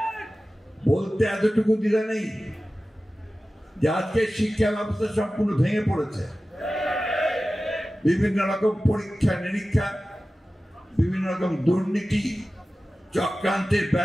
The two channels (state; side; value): normal; both; correlation 0.95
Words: বলতে এতটুকু দিলে নেই যে আজকে শিক্ষা ব্যবস্থা সম্পূর্ণ ভেঙে পড়েছে। বিভিন্ন রকম পরীক্ষা নিরীক্ষা, বিভিন্ন রকম দুর্নীতি চক্রান্তের